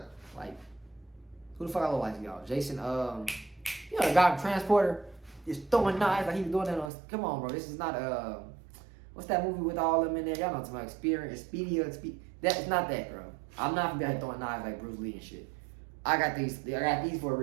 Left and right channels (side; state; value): left; drops out; at 6.9 s